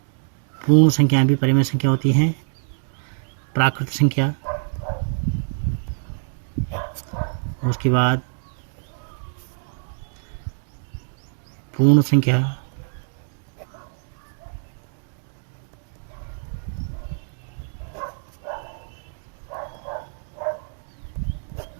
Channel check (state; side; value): silent; left; 62 dB below the other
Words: पूर्ण संख्याएं भी परिमेय संख्या होती हैं, प्राकृत संख्या, उसके बाद पूर्ण संख्या,